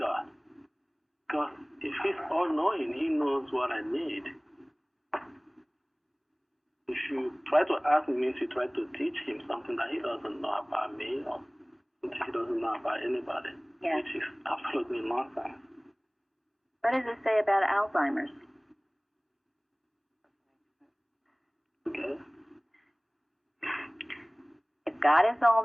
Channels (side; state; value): both; identical; correlation 1.00